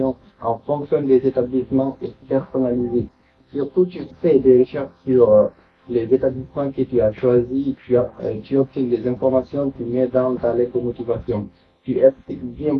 en fonction des établissements et personnaliser. Surtout, tu fais des recherches sur les établissements que tu as choisis, tu obtiens des informations, tu mets dans ta lettre de motivation. Tu expliques bien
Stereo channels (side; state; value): both; identical; correlation 1.00